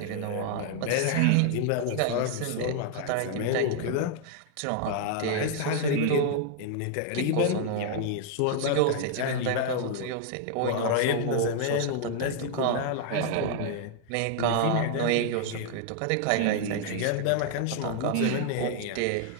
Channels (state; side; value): different; both; correlation 0.00